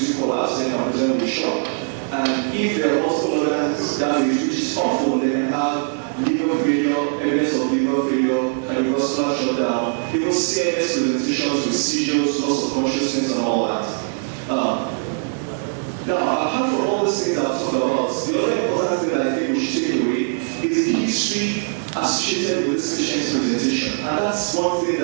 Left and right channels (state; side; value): silent; left; digital silence